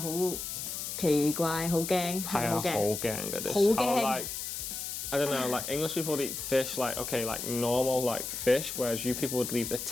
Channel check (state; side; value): noise; left; hiss, 5 dB below the sound